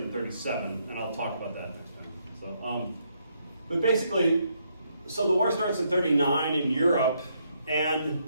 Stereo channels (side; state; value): both; inverted; correlation -0.75